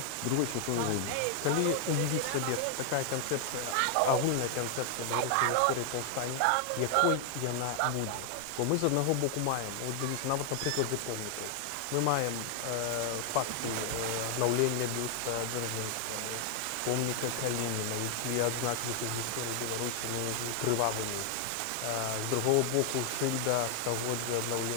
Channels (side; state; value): both; different; correlation 0.00